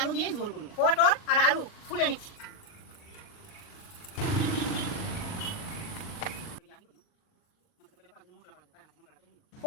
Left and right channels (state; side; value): late; right; 39 ms